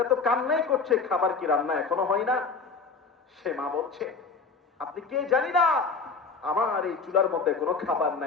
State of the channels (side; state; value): right; quieter; 4.6 dB